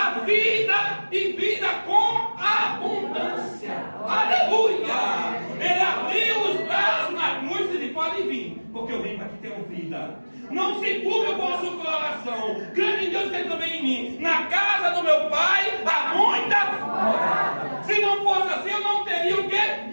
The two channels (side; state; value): both; inverted; correlation -1.00